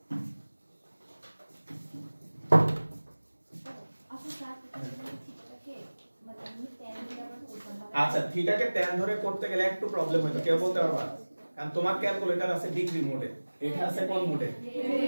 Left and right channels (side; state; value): both; inverted; correlation -1.00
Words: আচ্ছা থিটাকে tan ধরে করতে গেলে একটু প্রবলেম হয়তো কেউ বলতে পারবা কারণ তোমার ক্যালকুলেটর আছে ডিগ্রি মোডে এটা আছে কোন মোডে